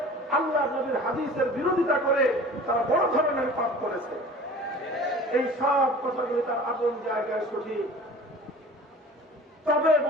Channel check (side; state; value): both; normal; correlation 0.42